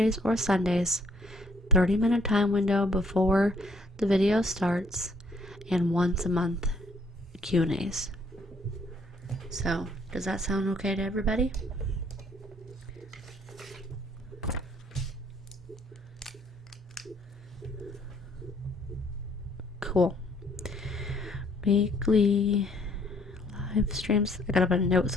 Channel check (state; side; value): normal; both; correlation 0.63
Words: or Sundays, 30-minute time window before the video starts, and once a month Q&As. So, does that sound okay to everybody? Cool. Weekly live streams. I gotta put a note